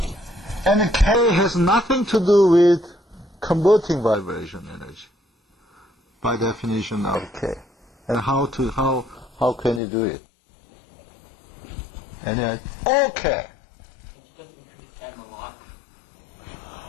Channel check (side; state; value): right; drops out; at 9.8 s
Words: And K has nothing to do with converting vibration energy, by definition of K. And how can you do it? And then, okay.